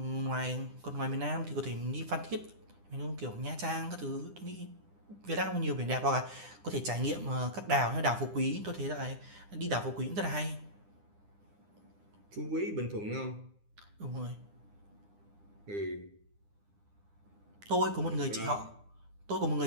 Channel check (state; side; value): late; left; 9.8 ms